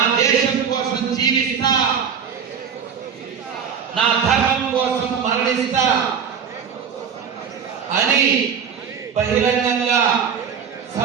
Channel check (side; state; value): left; quieter; 7.2 dB